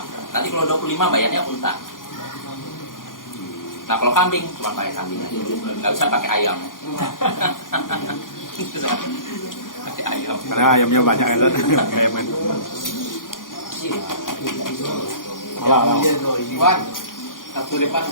Nanti kalau 25 bayarnya unta. Nah kalau kambing cuma pakai kambing aja, nggak bisa pakai ayam. Pakai ayam. Karena ayamnya banyak kan. Ayamnya. Alah. Wan. Satu depan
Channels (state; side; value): late; right; 0.90 ms